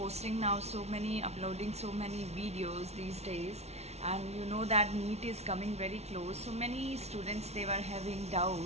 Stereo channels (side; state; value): left; late; 0.31 ms